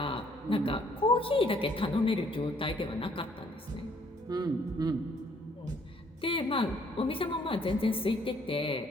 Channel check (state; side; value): normal; both; correlation 0.64